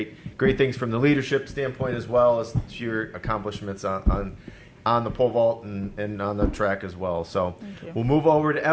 things from the leadership standpoint as well as your accomplishments on the pole vault and on the track as well. So Thank you. we'll move over to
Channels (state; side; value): identical; both; correlation 1.00